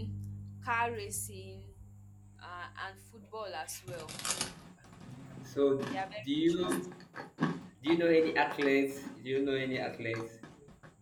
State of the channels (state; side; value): identical; both; correlation 1.00